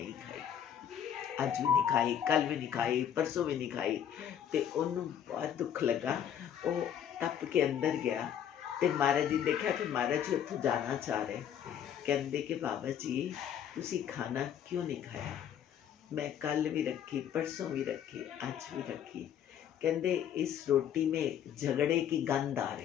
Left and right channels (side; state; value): right; quieter; 9.4 dB